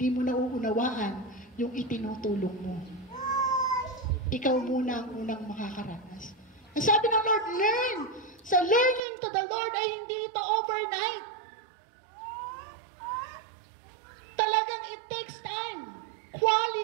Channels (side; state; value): left; drops out; at 9.0 s